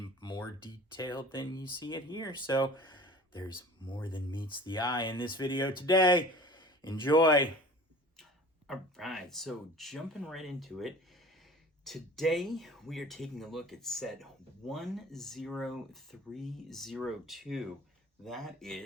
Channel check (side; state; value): both; normal; correlation 0.43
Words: more detail than you see it here. So there's more than meets the eye in this video today. Enjoy. All right, so jumping right into it. Today, we are taking a look at set 10302. That